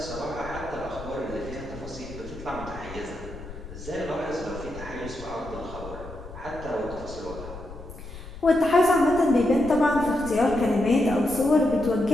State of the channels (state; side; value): noise; left; rumble, 14 dB below the sound